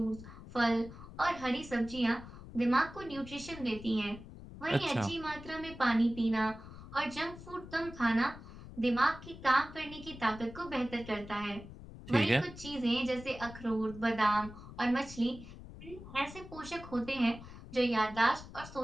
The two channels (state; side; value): noise; left; rumble, 15 dB below the sound